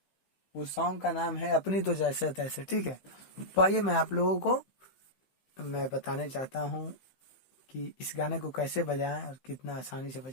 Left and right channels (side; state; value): right; late; 15 ms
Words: उस सॉन्ग का नाम है अपनी तो जैसे तैसे। ठीक है, तो आइए मैं आप लोगों को मैं बताने चाहता हूँ कि इस गाने को कैसे बजाएं और कितना आसानी से